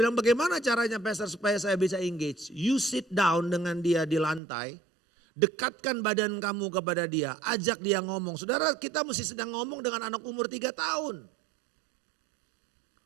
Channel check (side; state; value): left; drops out; at 4.4 s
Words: bagaimana caranya pastor supaya saya bisa engage? You sit down dengan dia di lantai dekatkan badan kamu kepada dia, ajak dia ngomong. Saudara, kita mesti sedang ngomong dengan anak umur 3 tahun.